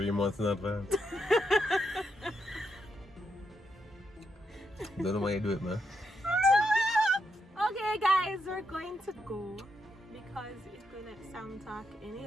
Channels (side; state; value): both; normal; correlation 0.82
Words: months in advance. Don't know why you do it, man. Okay, guys, we're going to go because if we let Sam talk any